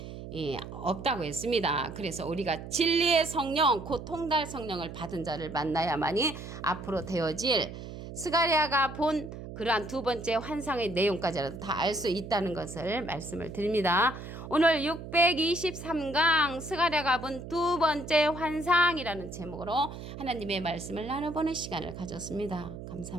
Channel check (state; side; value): noise; right; hum, 11 dB below the sound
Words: 없다고 했습니다. 그래서 우리가 진리의 성령 곧 통달 성령을 받은 자를 만나야만이 앞으로 되어질 스가랴가 본 그러한 2번째 환상의 내용까지라도 다 알 수 있다는 것을 말씀을 드립니다. 오늘 623강 스가랴가 본 2번째 환상이라는 제목으로 하나님의 말씀을 나눠보는 시간을 가졌습니다.